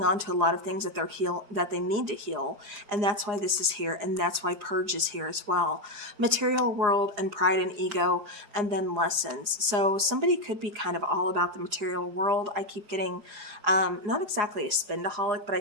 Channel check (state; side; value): late; left; 4.8 ms